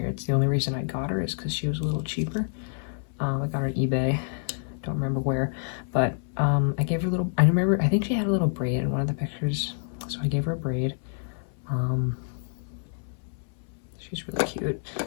It's the only reason I got her is because she was a little cheaper. I got her on eBay. Don't remember where, but I gave her a little, I remember, I think she had a little braid in one of the pictures, so I gave her a braid. She's really cute,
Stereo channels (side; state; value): right; silent; 59 dB below the other